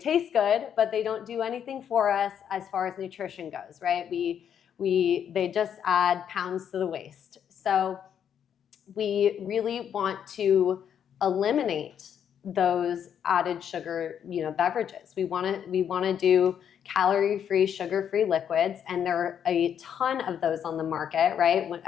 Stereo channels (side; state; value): right; quieter; 8.7 dB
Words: taste good, but they don't do anything for us as far as nutrition goes, right? They just add pounds to the waist. So we really want to eliminate those added sugar, beverages. We want to do calorie-free, sugar-free liquids, and there are a ton of those on the market, right?